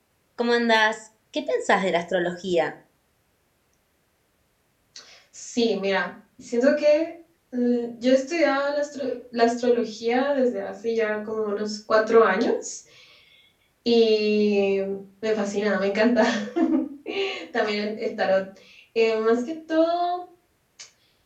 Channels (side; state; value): both; identical; correlation 1.00